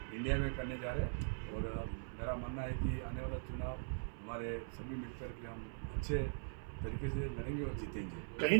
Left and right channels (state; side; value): silent; left; 50 dB below the other